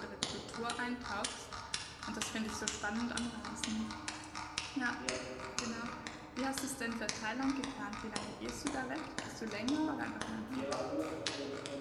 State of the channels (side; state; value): both; identical; correlation 1.00